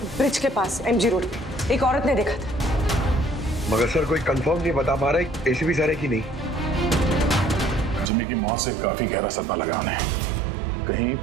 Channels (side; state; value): left; drops out; at 8.1 s